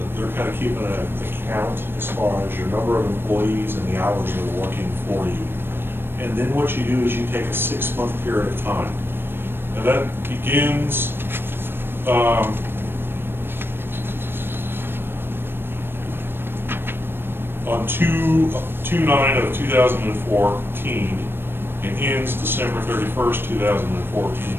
they're kind of keeping an account as far as your number of employees and the hours they're working for you. And then what you do is you take a 6-month period of time. And that begins, on 2/9/2014 and ends December 31st, 2014.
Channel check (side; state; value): left; late; 0.10 ms